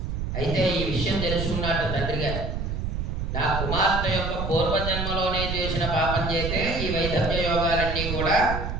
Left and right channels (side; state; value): right; noise; rumble, 3 dB below the sound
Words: అయితే ఈ విషయం తెలుసుకున్నట్టు తండ్రి గారు, నా కుమార్తె యొక్క పూర్వజన్మలోనే చేసిన పాపం చేస్తే ఈ వైధవ్య యోగాలన్నీ కూడా